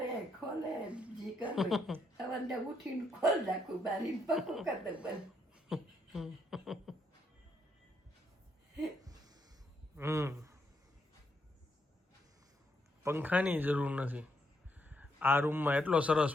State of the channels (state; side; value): normal; both; correlation 0.76